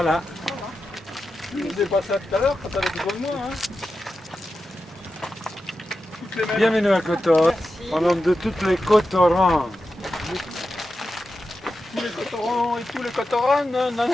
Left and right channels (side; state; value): both; normal; correlation 0.91